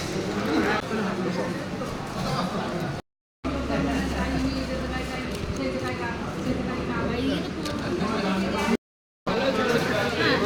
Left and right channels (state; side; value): identical; both; correlation 1.00